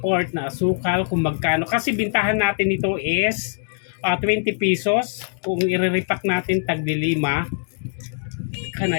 na asukal kung magkano. Kasi bintahan natin ito is 20 pesos. Kung i-repack natin tagli 5. Can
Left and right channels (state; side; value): silent; right; digital silence